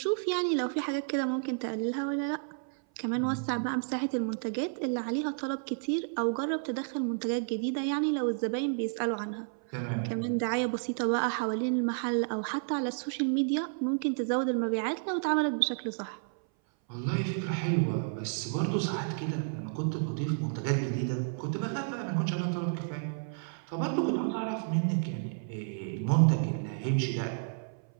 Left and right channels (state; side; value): silent; left; 57 dB below the other